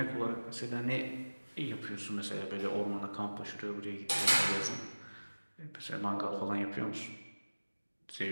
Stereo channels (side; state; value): both; inverted; correlation -1.00